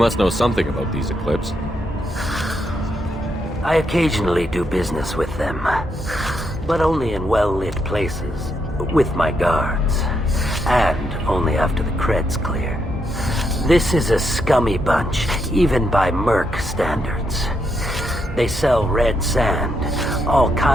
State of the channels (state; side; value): normal; both; correlation 0.79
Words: know something about these Eclipse. I occasionally do business with them, but only in well-lit places, with my guards, and only after the cred's clear. This is a scummy bunch, even by merc standards. They sell red sand, all